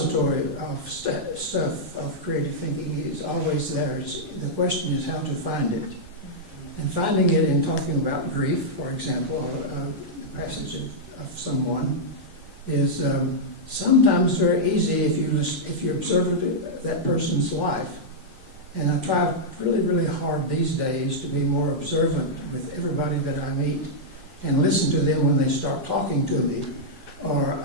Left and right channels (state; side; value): normal; both; correlation -0.07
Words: of stuff of creative thinking is always there. The question is how to find it. And finding it in talking about grief, for example, the passage of someone, is sometimes very easy if you observe that person's life. And I try really, really hard these days to be more observant with everybody that I meet and listen to them when they start talking to me, or